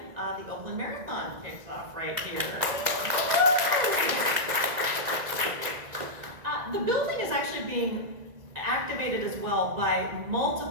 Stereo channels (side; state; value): left; late; 1.9 ms